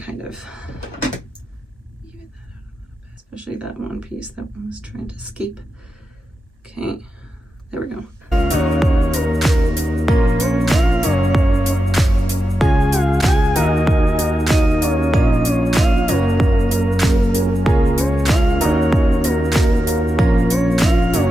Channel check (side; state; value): both; normal; correlation 0.90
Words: kind of even that out a little bit, especially that one piece that one was trying to escape. Okay, there we go.